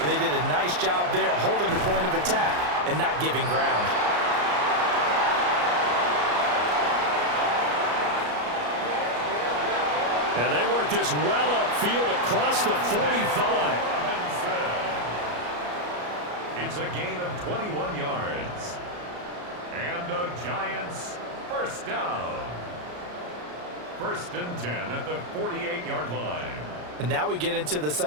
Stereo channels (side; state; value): left; late; 34 ms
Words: they did a nice job there holding the point of attack and not giving ground. And they work this well upfield across the 45. It's a gain of 21 yards. And the Giants first down. First and 10 at the 48-yard line. And now we get into the